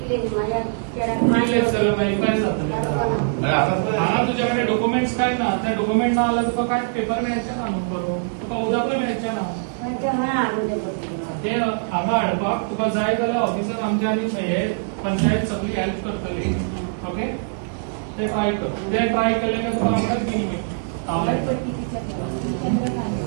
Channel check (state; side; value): silent; left; digital silence